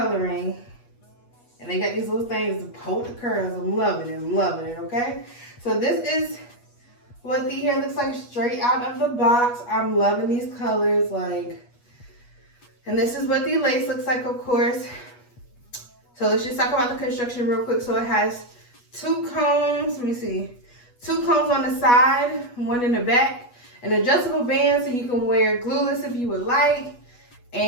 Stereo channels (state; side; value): late; right; 8.3 ms